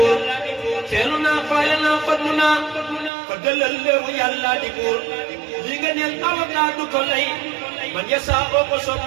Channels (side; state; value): left; drops out; at 3.1 s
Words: feelu naa faale naa fallu naa fa dalal léewu yàlla di buur li nga neel avocat du ko lay man ya saa ko soob